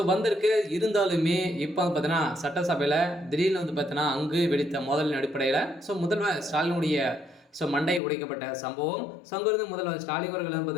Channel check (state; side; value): drops out; right; at 8.0 s